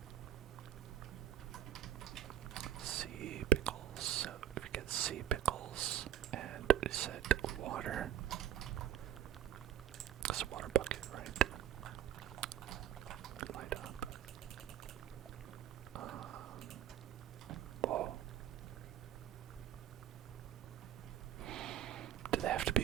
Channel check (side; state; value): left; quieter; 11.1 dB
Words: Sea pickles. So if you get sea pickles and set water, it's a water bucket, right? Light up. Whoa. Do they have to